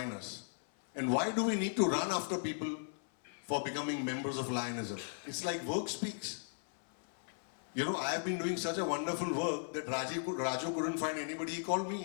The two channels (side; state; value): right; silent; 53 dB below the other